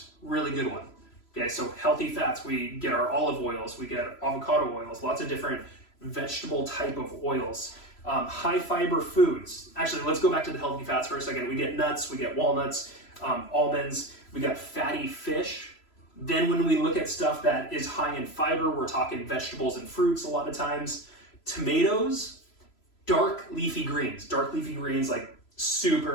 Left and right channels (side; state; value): right; late; 3.0 ms